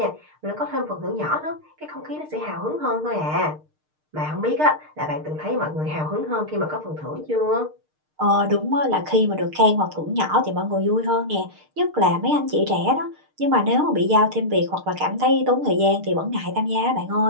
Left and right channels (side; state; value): left; late; 6.6 ms